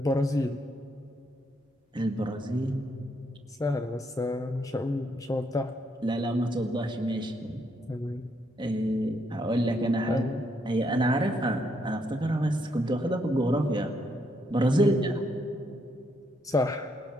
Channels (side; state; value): both; normal; correlation 0.75